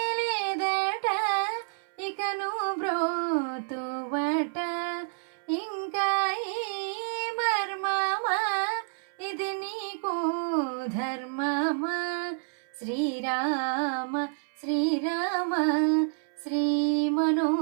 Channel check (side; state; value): left; silent; 59 dB below the other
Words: లేదట ఇకను బ్రోతువట ఇంకా ఈ మర్మమా ఇది నీకు ధర్మమా శ్రీరామ శ్రీరామ